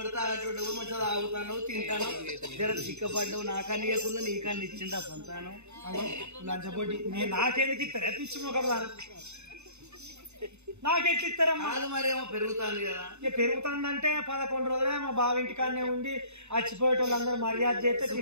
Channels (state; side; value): late; left; 0.82 ms